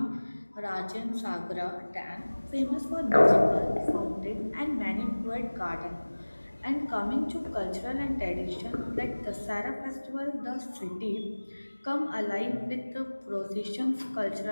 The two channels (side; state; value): both; inverted; correlation -1.00